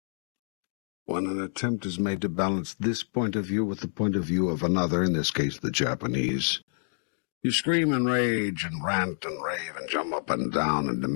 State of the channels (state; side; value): silent; right; digital silence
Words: When an attempt is made to balance this point of view with the point of view of another, in this case the Japanese, you scream and rage and rant and rave and jump up and down and